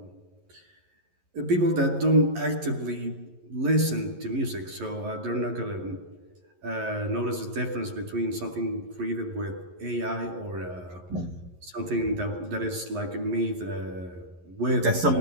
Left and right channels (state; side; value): late; left; 11 ms